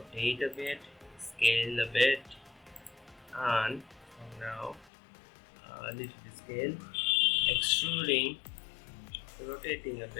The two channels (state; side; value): drops out; right; at 4.9 s